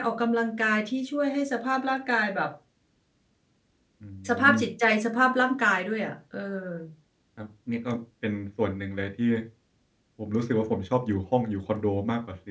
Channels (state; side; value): identical; both; correlation 1.00